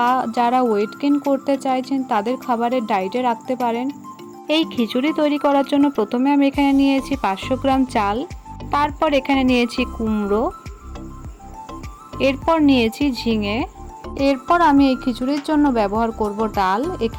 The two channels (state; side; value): identical; both; correlation 1.00